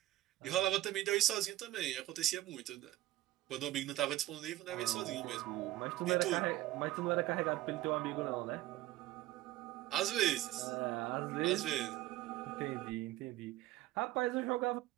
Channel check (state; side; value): quieter; left; 15.8 dB